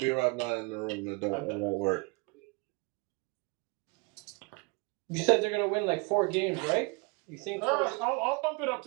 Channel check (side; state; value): left; quieter; 29.3 dB